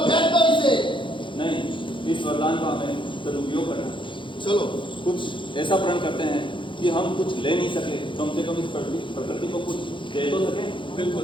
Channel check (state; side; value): late; right; 0.24 ms